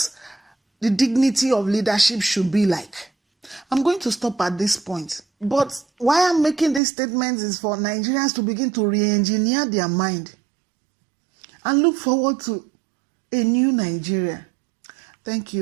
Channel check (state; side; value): drops out; left; at 6.8 s